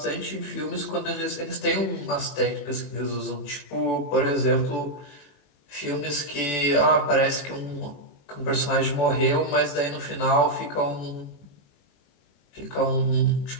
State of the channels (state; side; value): late; right; 21 ms